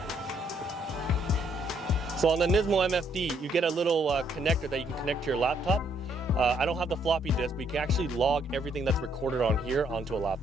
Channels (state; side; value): normal; both; correlation 0.70